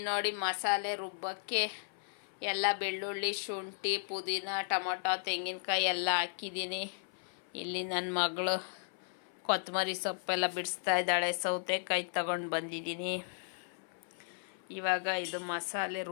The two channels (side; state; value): right; silent; 54 dB below the other